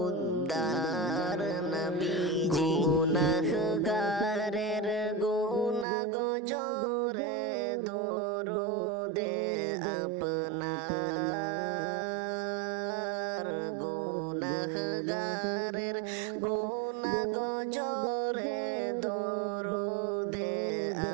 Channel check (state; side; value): drops out; left; at 5.9 s